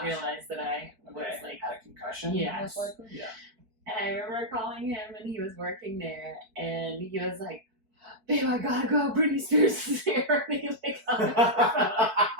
realize that I was had a concussion. Yeah. Most likely. Yeah. And I remember calling him, and he was working there, and he was like, "Babe, I gotta go. Britney Spears is here." And he hung up the phone.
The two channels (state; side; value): late; left; 4.6 ms